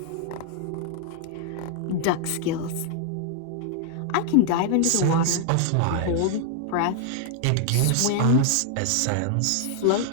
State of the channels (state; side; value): different; both; correlation 0.00